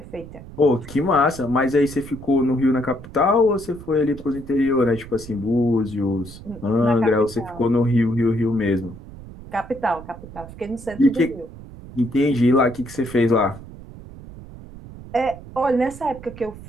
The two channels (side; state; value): right; noise; rumble, 16 dB below the sound